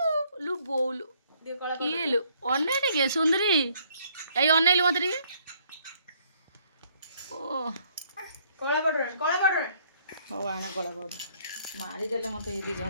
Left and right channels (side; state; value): both; inverted; correlation -0.65